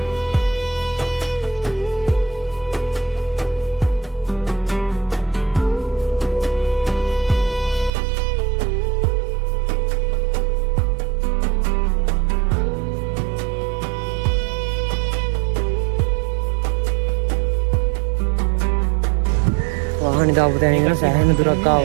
වාහනේ දාපු තැන ඉඳලා සෑහෙන දුරක්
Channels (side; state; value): left; drops out; at 7.9 s